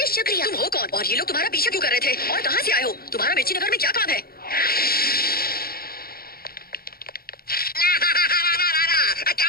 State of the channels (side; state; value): right; late; 0.44 ms